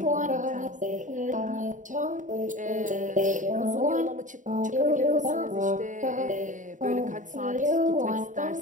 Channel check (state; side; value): late; left; 0.37 ms